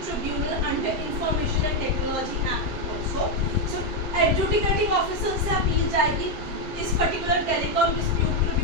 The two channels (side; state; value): left; late; 7.6 ms